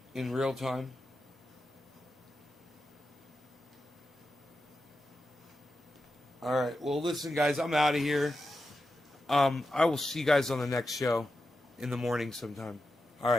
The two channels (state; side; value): normal; both; correlation 0.90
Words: In real time. All right. Well, listen, guys, I'm out of here. I will see you guys on the next show in the morning sometime. All